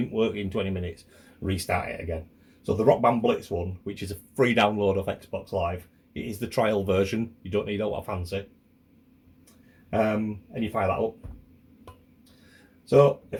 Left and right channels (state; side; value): identical; both; correlation 1.00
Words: work in 20 minutes, restart it again. So the Rock Band Blitz one, which is a free download of Xbox Live, it is the trial version. You don't need a lot of fancy. And you fire that up. So